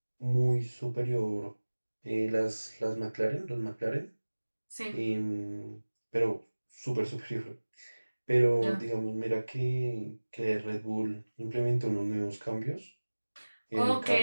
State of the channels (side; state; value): both; inverted; correlation -1.00